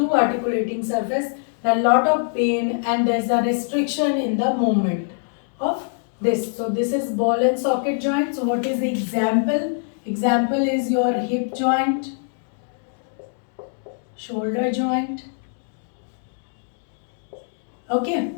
articulating surface, a lot of pain, and there is a restriction in the movement of this. So this is ball and socket joint. So what is the example? Example is your hip joint, shoulder joint. Okay,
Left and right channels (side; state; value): right; silent; digital silence